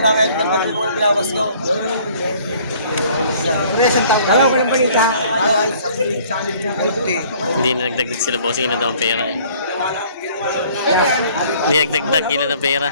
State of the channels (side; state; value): both; inverted; correlation -0.56